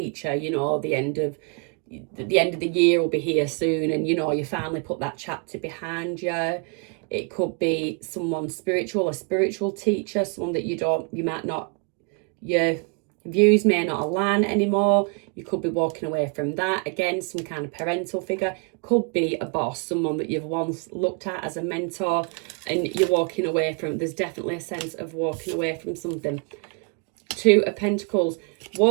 you know, the end of the year will be here soon, and you know, you finally put that chapter behind you. It could be someone spiritual, a spiritual teacher, someone that your views may not align anymore. You could be walking away from that. Again, some kind of parental figure. Could be a boss, someone that you've once looked at as a mentor and you're walking away from. There's definitely a sense of walking away from something. 2 of Pentacles,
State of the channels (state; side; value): quieter; left; 36.9 dB